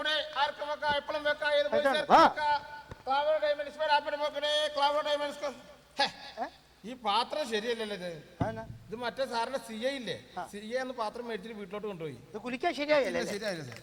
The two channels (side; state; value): both; identical; correlation 1.00